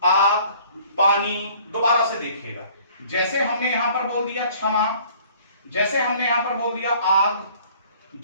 आग, पानी। दोबारा से देखिएगा, जैसे हमने यहां पर बोल दिया क्षमा, जैसे हमने यहां पर बोल दिया आग,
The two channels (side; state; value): both; inverted; correlation -0.54